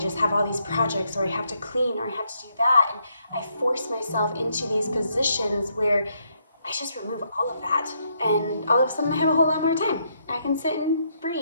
just have all these projects, or I have to clean, or I have to do that. And I force myself into these positions where I just remove all of that, and all of a sudden I have a whole lot more time. I can sit and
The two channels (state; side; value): inverted; both; correlation -0.75